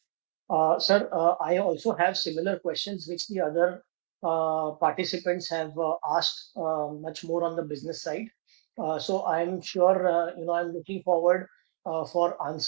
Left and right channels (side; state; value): left; silent; digital silence